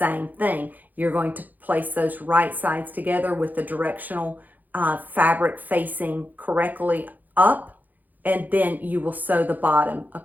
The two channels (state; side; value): late; left; 0.083 ms